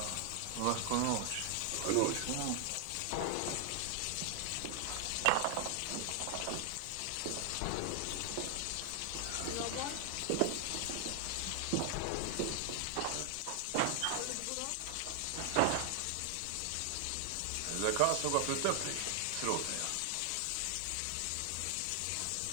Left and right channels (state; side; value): different; both; correlation 0.00